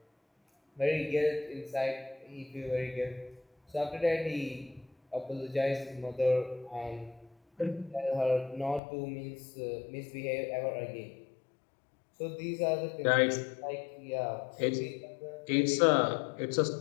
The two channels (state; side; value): drops out; right; at 8.8 s